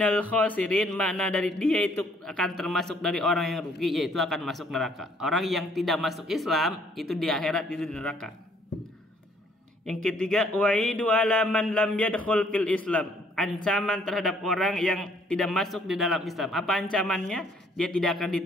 khasirin, makna dari dia itu akan termasuk dari orang yang rugi, yaitu akan masuk neraka. Orang yang tidak masuk Islam itu di akhirat itu di neraka. Yang ketiga, waidu ala man lam yadkhul fil Islam, ancaman terhadap orang yang tidak masuk di dalam Islam. Apa ancamannya? Dia tidak akan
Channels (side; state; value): both; normal; correlation 0.63